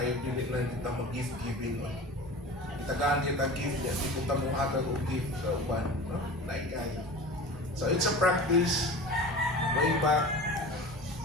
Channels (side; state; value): both; normal; correlation 0.35